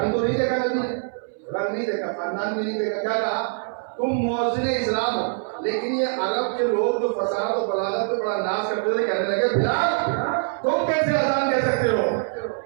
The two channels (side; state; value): left; silent; 61 dB below the other